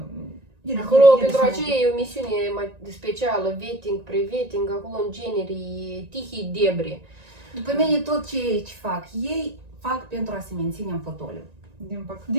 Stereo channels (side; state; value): left; late; 1.9 ms